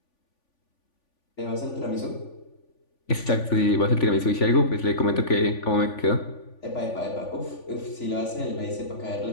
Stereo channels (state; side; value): late; right; 3.5 ms